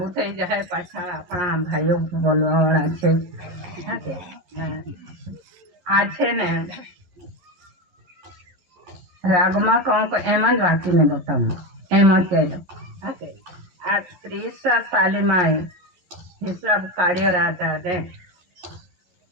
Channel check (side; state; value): left; late; 11 ms